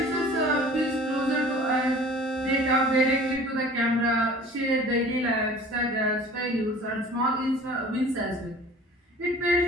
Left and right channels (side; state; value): both; normal; correlation 0.46